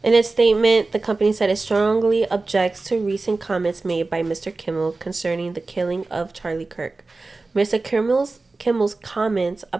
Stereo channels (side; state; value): left; quieter; 3.5 dB